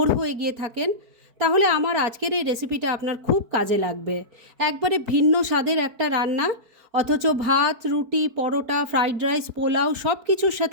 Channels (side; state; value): left; late; 4.5 ms